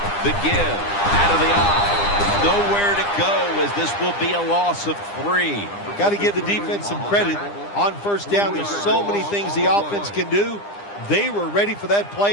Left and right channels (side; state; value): right; late; 9.9 ms